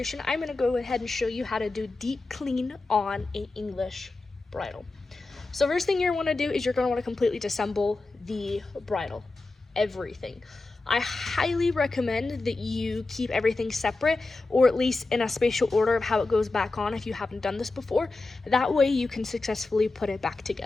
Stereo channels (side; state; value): right; quieter; 3.4 dB